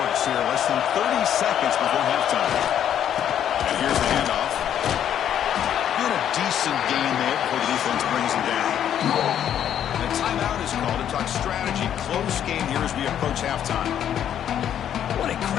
here. Less than 30 seconds before halftime. And here's the handoff. Been a decent game there before the defense brings him down. And a timeout is called to talk strategy. Close game here as we approach halftime. What a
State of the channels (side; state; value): right; quieter; 9.9 dB